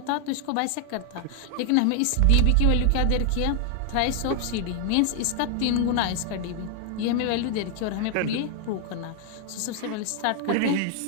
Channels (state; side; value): different; both; correlation 0.00